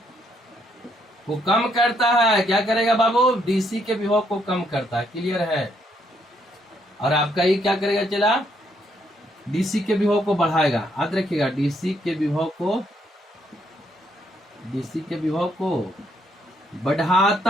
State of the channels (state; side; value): normal; both; correlation 0.73